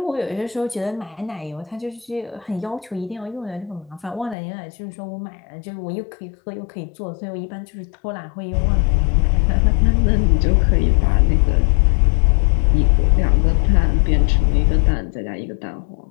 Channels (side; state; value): right; drops out; at 4.4 s